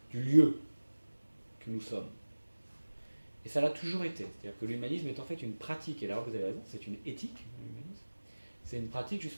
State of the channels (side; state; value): both; inverted; correlation -1.00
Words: du lieu que nous sommes. Et ça l'a toujours été. C'est-à-dire que l'humanisme est en fait une pratique, et là vous avez raison, c'est une éthique, l'humanisme. C'est une pratique